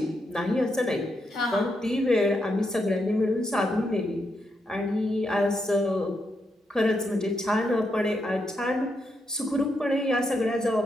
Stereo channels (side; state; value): both; normal; correlation 0.82